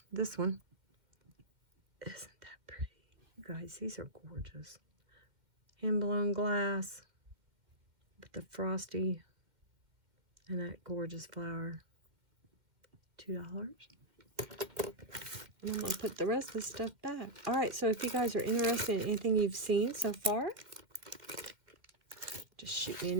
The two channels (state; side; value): late; left; 2.3 ms